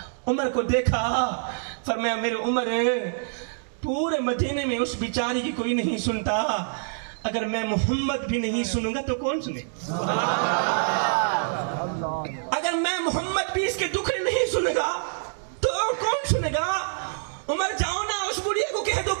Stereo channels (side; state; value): left; silent; digital silence